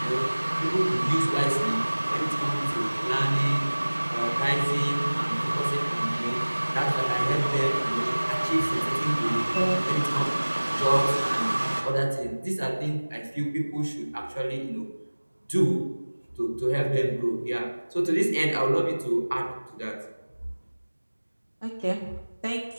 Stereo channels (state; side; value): inverted; both; correlation -1.00